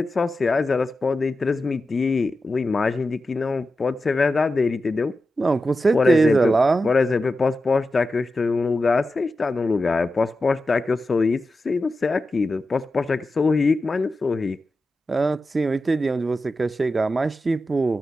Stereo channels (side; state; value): both; normal; correlation 0.91